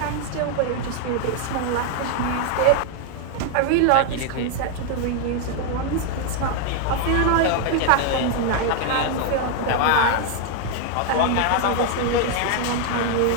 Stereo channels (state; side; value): different; both; correlation 0.01